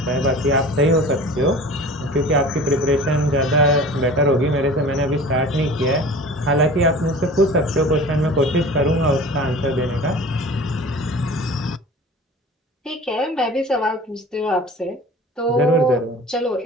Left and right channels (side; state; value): both; normal; correlation 0.41